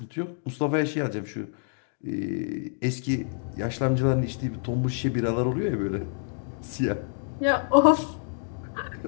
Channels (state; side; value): silent; right; digital silence